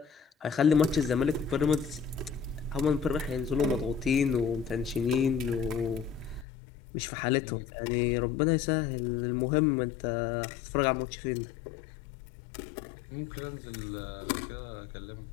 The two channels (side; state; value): right; drops out; at 6.5 s